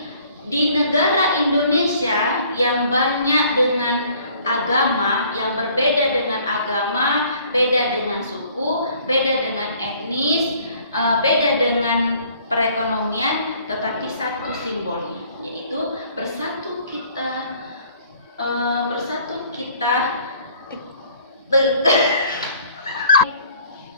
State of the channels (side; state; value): both; inverted; correlation -0.58